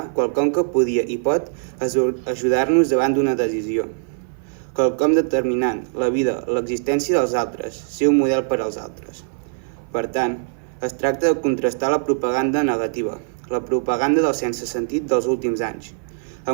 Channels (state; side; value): silent; left; 57 dB below the other